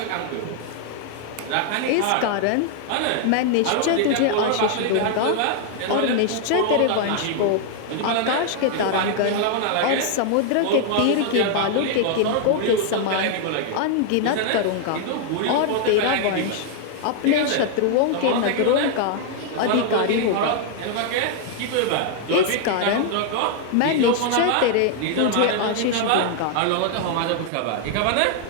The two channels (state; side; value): different; both; correlation 0.00